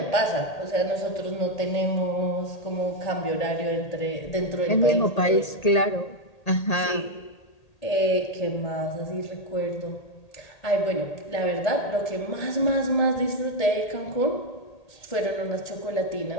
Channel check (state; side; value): late; right; 1.8 ms